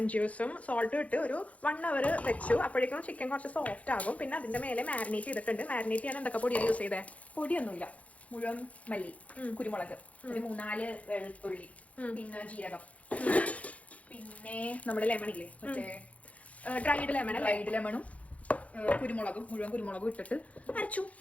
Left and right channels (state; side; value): late; right; 0.067 ms